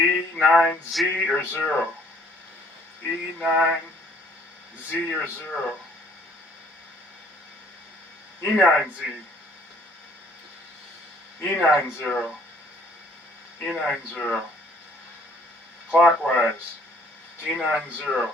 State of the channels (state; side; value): normal; both; correlation 0.59